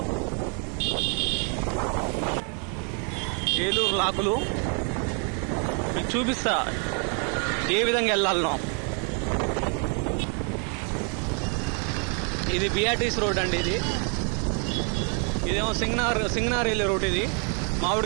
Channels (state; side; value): quieter; left; 39.6 dB